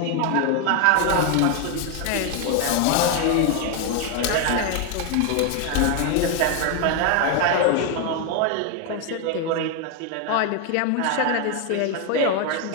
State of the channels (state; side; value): different; both; correlation 0.01